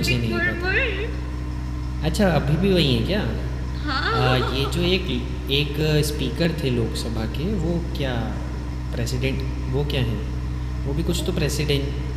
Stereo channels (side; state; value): both; identical; correlation 1.00